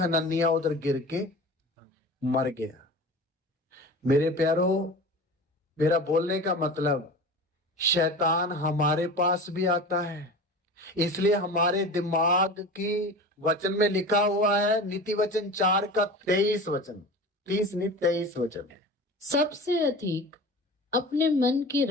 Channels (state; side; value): normal; both; correlation 0.34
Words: उधर गिर के मर गया। मेरे प्यारों, मेरा बोलने का मतलब, शैतान हमारे पास भी आता है। इसलिए हमारे दिमाग की वचन में लिखा हुआ है, नीति वचन 4 का 23 वचन, 30 नहीं 23 वचन है। सबसे अधिक अपने मन की